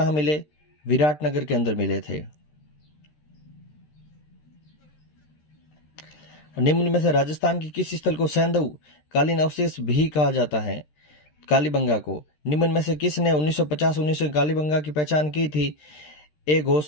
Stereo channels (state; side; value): late; right; 13 ms